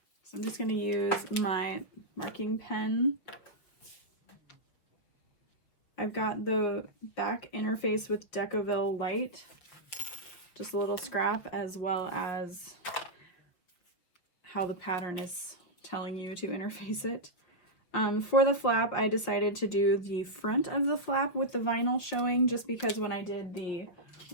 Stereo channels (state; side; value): late; right; 5.9 ms